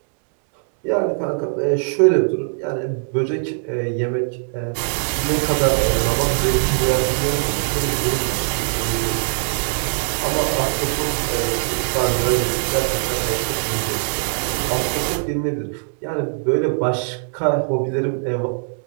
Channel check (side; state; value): left; silent; digital silence